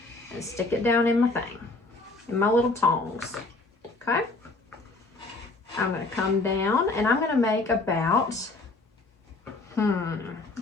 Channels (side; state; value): right; quieter; 3.2 dB